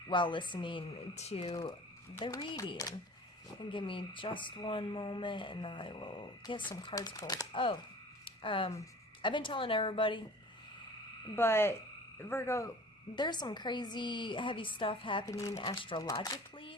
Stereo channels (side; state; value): both; normal; correlation 0.44